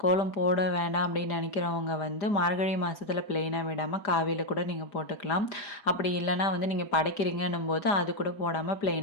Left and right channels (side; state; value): right; late; 5.0 ms